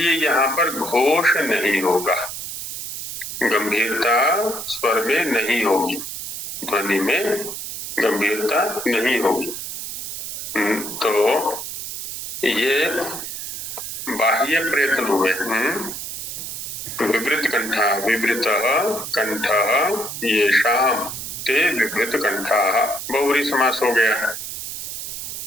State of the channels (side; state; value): right; noise; hiss, 6 dB below the sound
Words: यहाँ पर घोष नहीं होगा, गंभीरता स्वर में नहीं होगी, ध्वनि में गंभीरता नहीं होगी। तो ये बाह्य प्रयत्न हुए। विवृत कंठा, विवृत कंठ ये शाम ते विवृत कंठा, बहुव्रीहि समास हो गया।